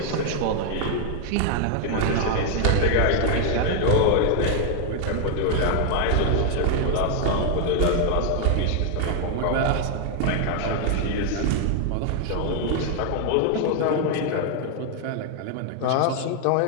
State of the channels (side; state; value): both; different; correlation 0.00